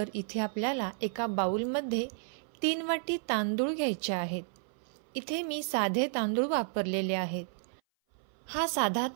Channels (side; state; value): left; silent; 56 dB below the other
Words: इथे आपल्याला एका बाउलमध्ये 3 वाटी तांदूळ घ्यायचे आहेत। इथे मी साधे तांदूळ वापरलेले आहेत। हा साधा